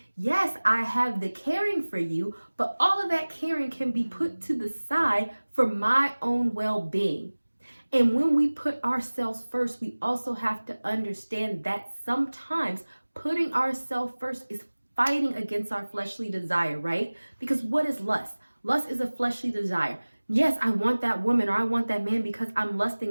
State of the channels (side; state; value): both; inverted; correlation -1.00